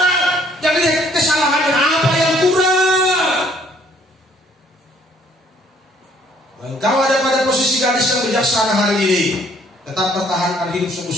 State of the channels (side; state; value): both; normal; correlation 0.62